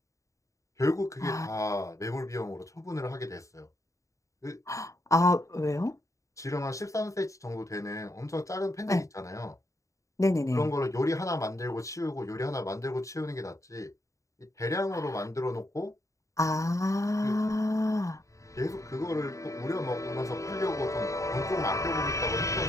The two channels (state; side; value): late; right; 0.15 ms